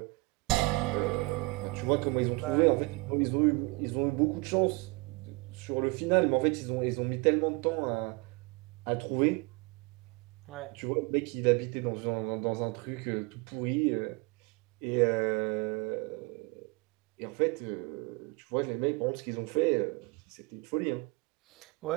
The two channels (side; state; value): left; quieter; 26.1 dB